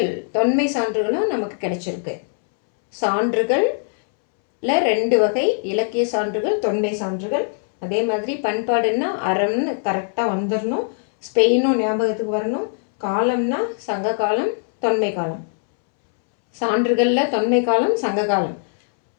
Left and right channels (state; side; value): silent; right; 65 dB below the other